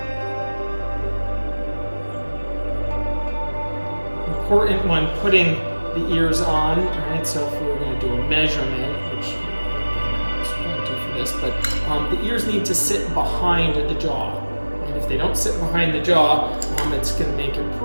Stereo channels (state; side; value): inverted; both; correlation -1.00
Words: Important when putting the ears on, right? So if we were going to do a measurement, which I won't do for this, but the ears need to sit behind the jaw. And if they don't sit behind the jaw, it's going to make it